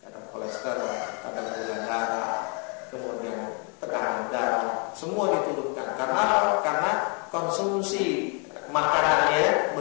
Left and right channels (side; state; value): right; quieter; 36.3 dB